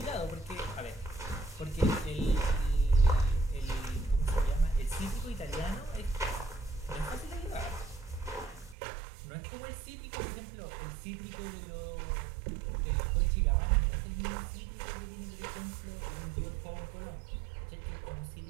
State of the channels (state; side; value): drops out; left; at 8.8 s